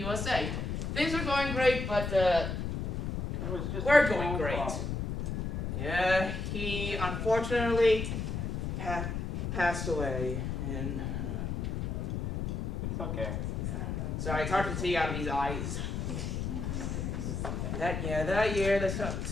Things were going great, but we're going great. Yeah, he unfortunately passed away in It's okay. Sorry, it's hard to see out of these eyes. That year the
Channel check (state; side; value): noise; left; rumble, 2 dB below the sound